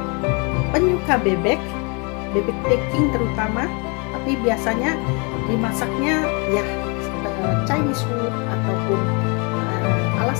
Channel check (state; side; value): quieter; right; 32.7 dB